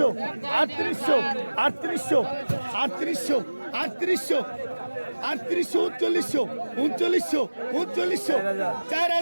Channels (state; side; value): inverted; both; correlation -1.00